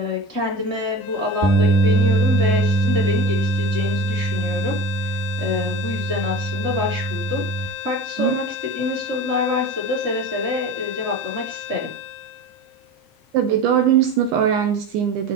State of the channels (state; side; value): normal; both; correlation 0.32